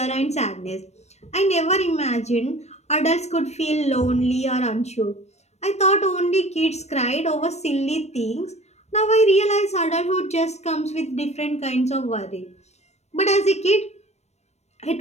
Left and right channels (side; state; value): right; late; 0.32 ms